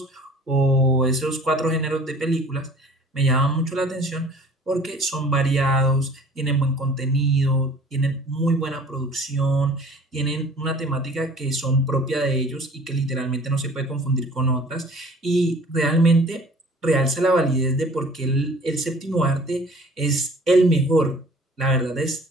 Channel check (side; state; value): both; normal; correlation 0.49